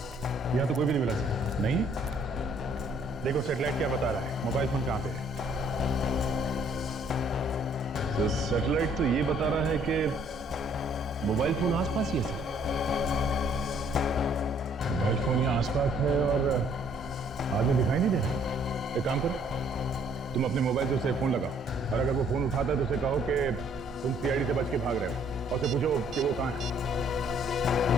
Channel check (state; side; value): normal; both; correlation 0.63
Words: यहाँ तो कोई भी नहीं मिला सर। नहीं? देखो सैटेलाइट क्या बता रहा है, मोबाइल फोन कहाँ पे है? तो सैटेलाइट तो ये बता रहा है कि मोबाइल फोन आसपास ही है सर। मोबाइल फोन यहाँ आसपास है और आदमी दिखाई नहीं दे रहा। एक काम करो, तुम अपने मोबाइल से उसे फोन लगाओ, और अगर वो फोन उठाता है तो उसे कहो कि तुम सीआईडी से बच के भाग रहे हो, और उसे पूछो कि वो कहाँ है।